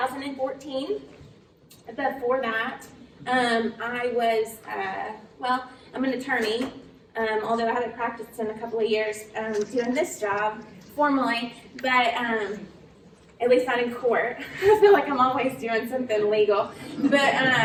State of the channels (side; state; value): both; identical; correlation 1.00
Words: Before that, I was, I'm an attorney, although I haven't practiced in a couple of years doing this job formally, but at least not in court. I feel like I'm always doing something legal. But